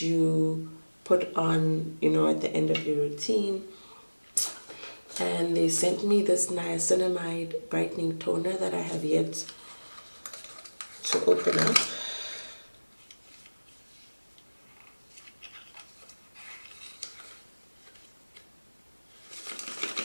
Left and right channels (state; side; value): inverted; both; correlation -1.00